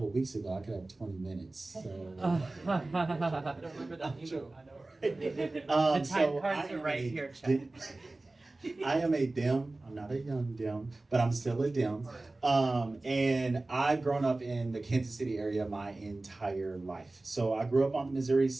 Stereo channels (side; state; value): left; quieter; 3.0 dB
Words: weeks ago I could have 20 minutes, so. I don't remember that email. The So time cards I are am right a here, Chad. I am a Dem. I'm not a young Dem, but I'm still a Dem. And I've grown up in the Kansas City area my entire life. So I grew up on the Missouri